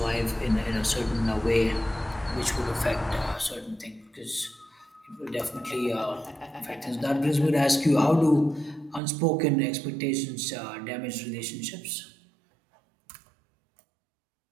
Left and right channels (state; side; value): drops out; left; at 9.0 s